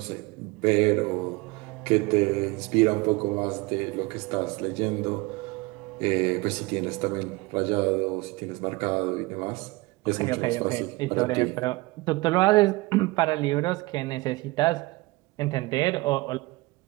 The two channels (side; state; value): left; quieter; 22.8 dB